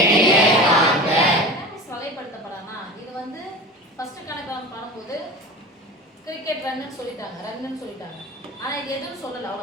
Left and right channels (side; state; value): both; normal; correlation 0.33